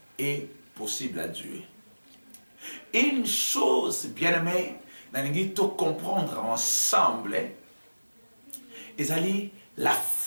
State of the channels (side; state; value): both; inverted; correlation -1.00